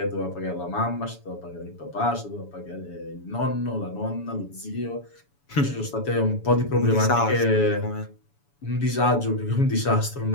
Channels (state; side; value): late; right; 7.0 ms